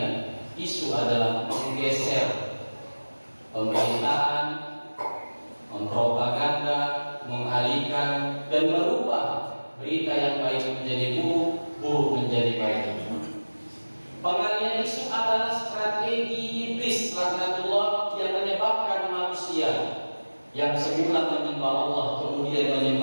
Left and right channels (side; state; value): both; inverted; correlation -1.00